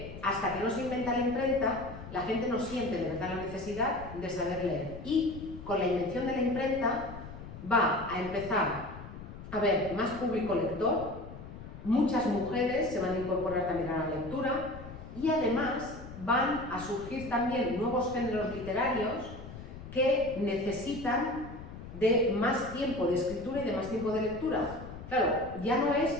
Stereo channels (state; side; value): noise; left; rumble, 13 dB below the sound